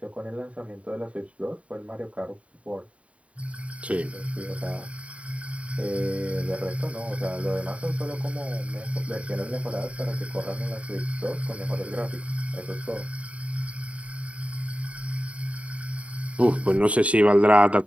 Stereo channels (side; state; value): left; late; 0.065 ms